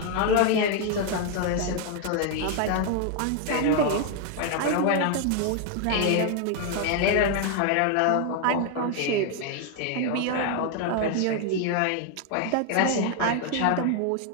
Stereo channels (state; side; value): different; both; correlation 0.00